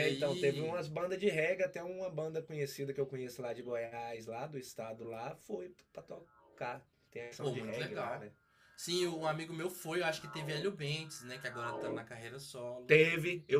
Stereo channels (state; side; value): identical; both; correlation 1.00